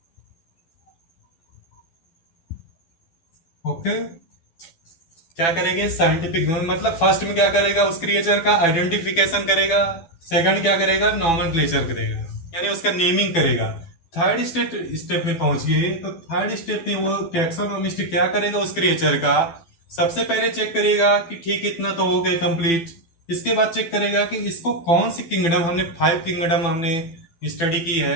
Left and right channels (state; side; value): late; right; 12 ms